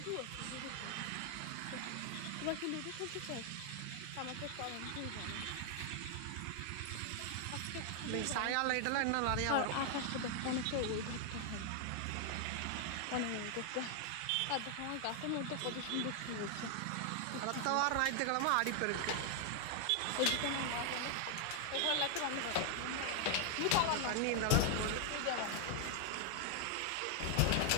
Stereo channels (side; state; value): both; different; correlation 0.00